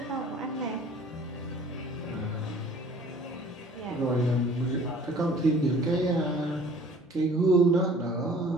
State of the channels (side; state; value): both; normal; correlation 0.51